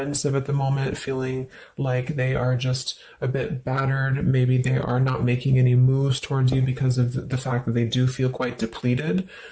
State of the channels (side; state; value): both; identical; correlation 1.00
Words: at the moment, feeling like they are just a bit battered. Maybe they are not making any moves towards you because of the fact that they do feel quite depleted.